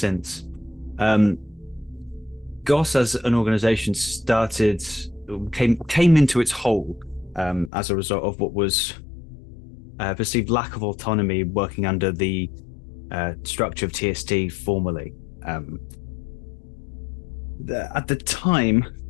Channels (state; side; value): drops out; right; at 7.7 s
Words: GOS as an organisation came into its whole as a result of what was perceived lack of autonomy working under the structure of TST formally. At the time,